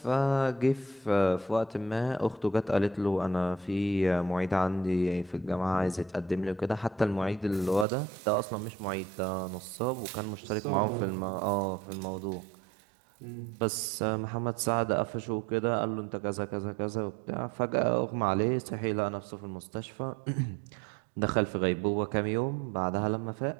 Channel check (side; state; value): left; drops out; at 7.9 s